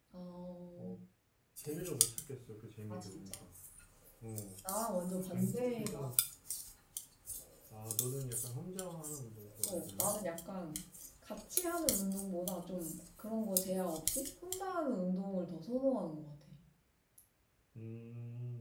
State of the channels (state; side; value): identical; both; correlation 1.00